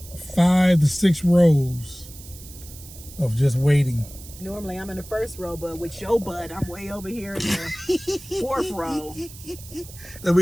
5 to 6 rows of just waiting. Normally I'm in the first row, but with your butt, I'm way over here in the 4th row. I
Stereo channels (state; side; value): noise; right; hiss, 17 dB below the sound